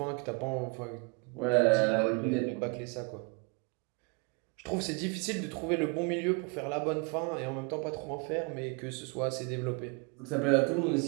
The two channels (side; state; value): left; quieter; 31.8 dB